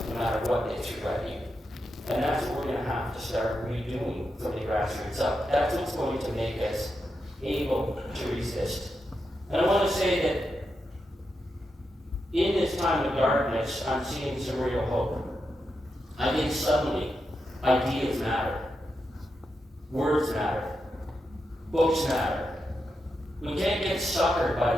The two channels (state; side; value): normal; both; correlation 0.86